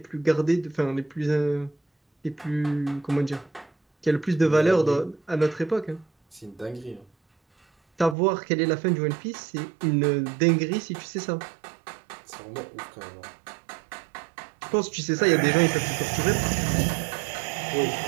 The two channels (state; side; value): drops out; left; at 8.2 s